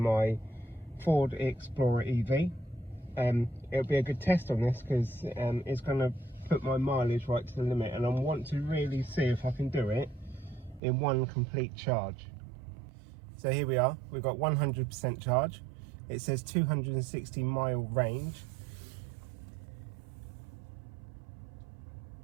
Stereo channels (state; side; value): drops out; left; at 10.8 s